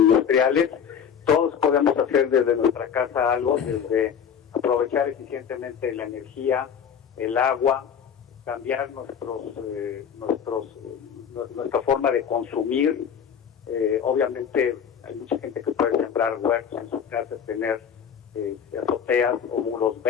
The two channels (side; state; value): right; quieter; 7.8 dB